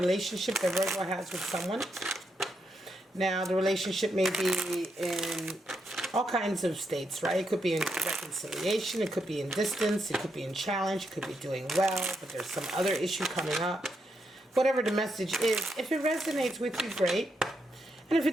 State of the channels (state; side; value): normal; both; correlation 0.81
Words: that Virgo has with someone. Now, the relationship may be in all kinds of states, right? It could be in reconciliation, it could be in distance, it could be in challenge, it could be doing well, but there's some other issue coming up. Whatever the message is, if it resonates with you, great. And if it